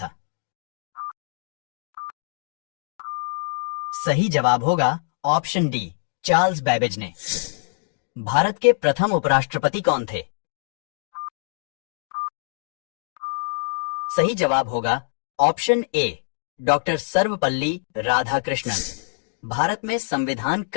सही जवाब होगा ऑप्शन डी, चार्ल्स बेबेज ने। भारत के प्रथम उपराष्ट्रपति कौन थे? सही जवाब होगा option A, doctor Sarvepalli Radhakrishnan. Bharat में संविधान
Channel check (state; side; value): silent; right; digital silence